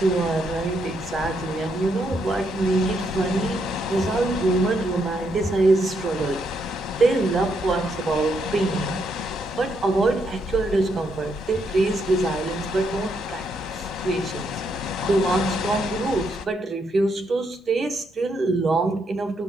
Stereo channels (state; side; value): normal; both; correlation 0.77